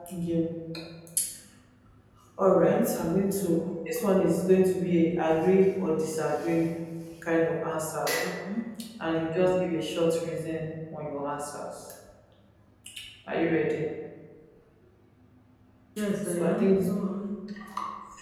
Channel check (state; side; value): identical; both; correlation 1.00